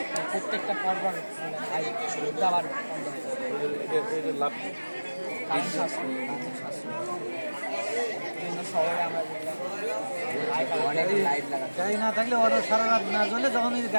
প্রত্যেকটা পরপর আবার বন্ধ হয়ে যাবে। এটা লাভ কারণ শাস্ত্রীয় বিভিন্ন শহরে আমরা অনেক লাইট লাগাই। গাড়ি না থাকলে ওরা সারা রাত না জ্বলে, যখন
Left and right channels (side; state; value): both; inverted; correlation -1.00